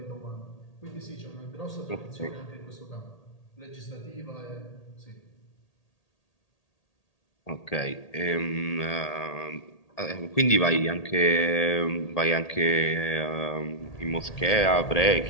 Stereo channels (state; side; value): late; right; 1.8 ms